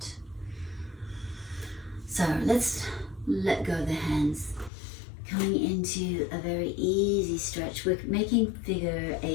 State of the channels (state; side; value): drops out; right; at 4.7 s